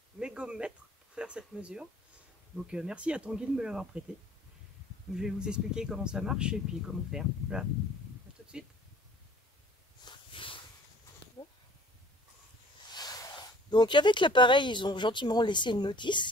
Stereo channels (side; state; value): both; normal; correlation 0.51